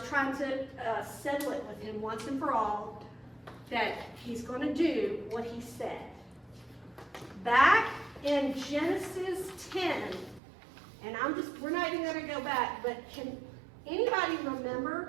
trying to settle it with him once and for all, that he's going to do what he said. Back in Genesis 10, and we're not even going to go back, but can anybody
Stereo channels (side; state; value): left; drops out; at 10.4 s